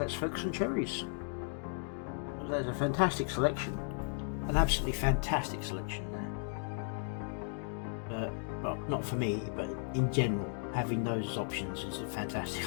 focus on cherries. There's a fantastic selection. An absolutely fantastic selection there. Well, not for me, but in general, having those as options is a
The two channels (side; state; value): right; silent; 54 dB below the other